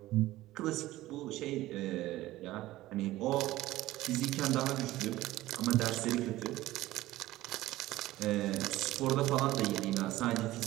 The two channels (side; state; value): left; quieter; 16.5 dB